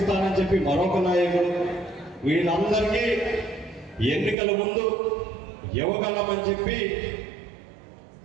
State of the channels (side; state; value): left; drops out; at 4.4 s